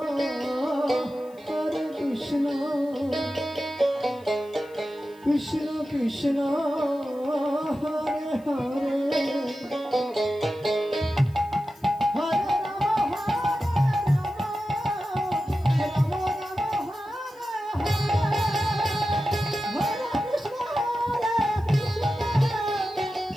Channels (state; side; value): noise; left; hiss, 29 dB below the sound